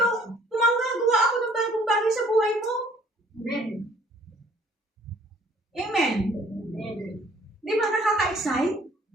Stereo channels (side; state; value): both; normal; correlation 0.58